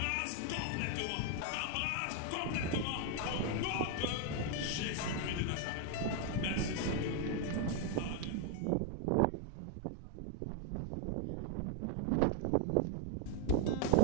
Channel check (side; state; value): both; different; correlation 0.01